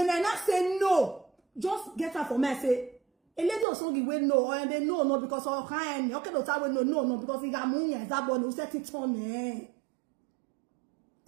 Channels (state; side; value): drops out; left; at 3.7 s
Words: I not say no, just get her for me. I say, a lady of song will no, or they no because all kind. Okay, no because he got money as that one who set it on.